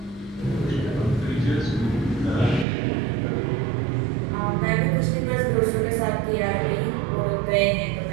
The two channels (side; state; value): left; drops out; at 2.7 s